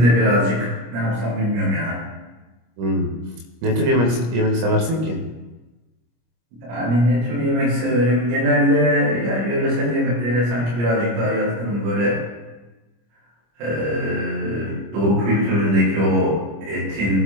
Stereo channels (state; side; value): late; left; 25 ms